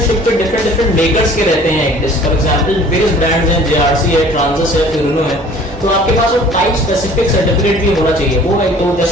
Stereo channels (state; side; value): normal; both; correlation 0.50